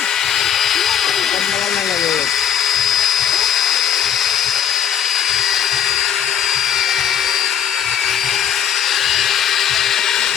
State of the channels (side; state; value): right; quieter; 9.2 dB